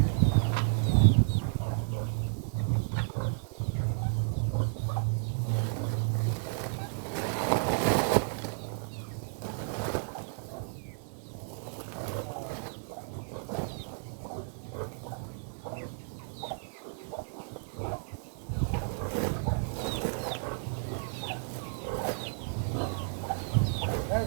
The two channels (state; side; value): silent; left; digital silence